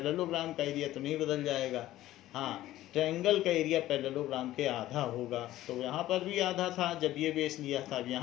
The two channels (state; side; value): quieter; right; 14.8 dB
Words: का एरिया तो नहीं बदल जाएगा। हाँ, ट्रायंगल का एरिया पैरेललोग्राम के आधा होगा, तो यहाँ पर भी आधा था जब ये बेस लिया था, अब